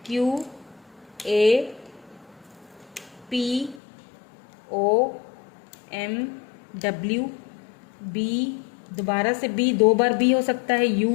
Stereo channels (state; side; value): drops out; right; at 3.8 s